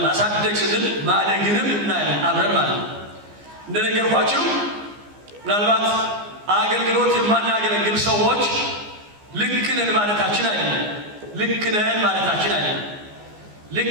ማሳደግ ስንል ማደግንም እናያለን አብረን ማለት ነው። እንደነገርኳችሁ ምናልባት አገልግሎት የማናገለግል ሰዎች ልክ ነን ማለታችን አይደለም።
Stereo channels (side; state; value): left; late; 14 ms